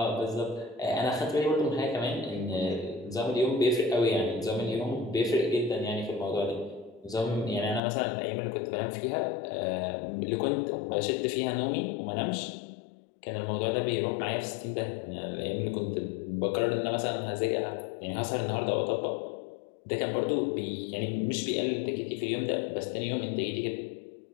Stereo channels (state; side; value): drops out; right; at 7.8 s